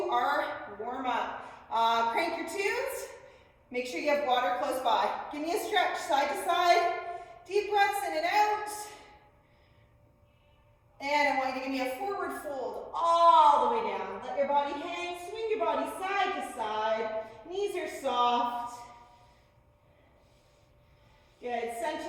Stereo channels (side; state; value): both; identical; correlation 1.00